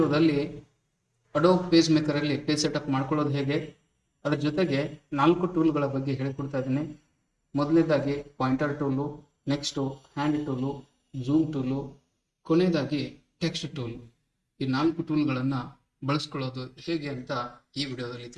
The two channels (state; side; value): identical; both; correlation 1.00